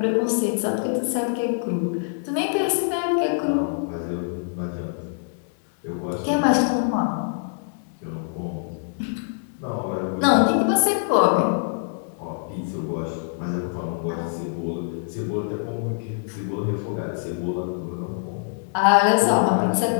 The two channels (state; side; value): silent; right; digital silence